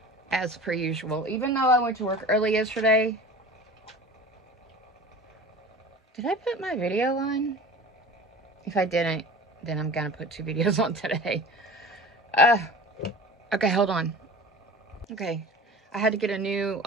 As per usual. Even though I went to work early yesterday. Did I put my video on? If I didn't, then I'm gonna put 2 videos on today. Okay, hold on. Okay. I had to get a new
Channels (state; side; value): normal; both; correlation 0.37